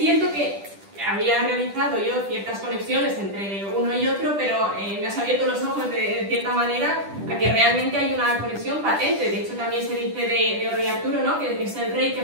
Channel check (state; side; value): late; left; 10 ms